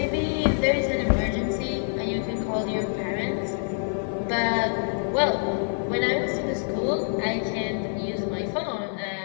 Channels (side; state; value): right; silent; 56 dB below the other